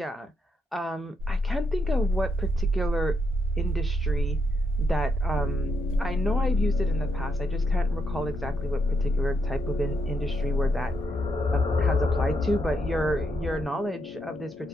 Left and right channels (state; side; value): normal; both; correlation 0.79